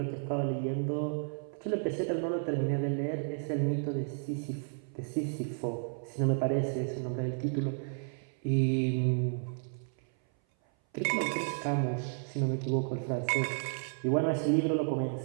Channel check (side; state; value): left; silent; 56 dB below the other